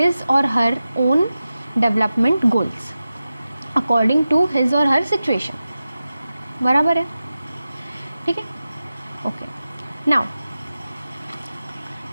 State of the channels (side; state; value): both; inverted; correlation -0.94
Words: or her own development goals according to his or her situation, बराबर है। ठीक है, ओके। नाउ